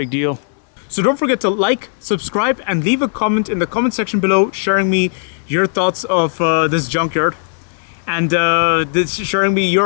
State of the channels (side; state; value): right; silent; 60 dB below the other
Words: deal. So don't forget to like, subscribe, and leave a comment in the comment section below sharing me your thoughts of this junkyard. And sharing me